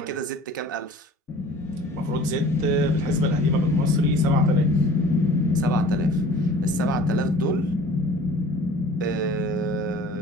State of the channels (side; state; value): both; normal; correlation 0.46